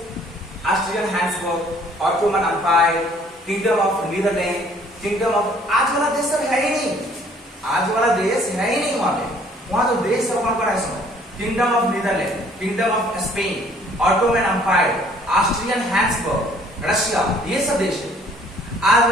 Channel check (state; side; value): normal; both; correlation 0.58